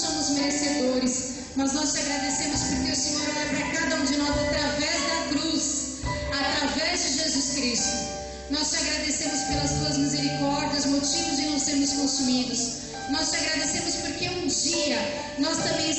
merecedores, mas nós te agradecemos porque o Senhor olha para cada um de nós através da cruz, através de Jesus Cristo. Nós te agradecemos pelas Tuas misericórdias, motivos de não sermos consumidos. Nós te agradecemos porque um dia nós também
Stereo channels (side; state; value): both; identical; correlation 1.00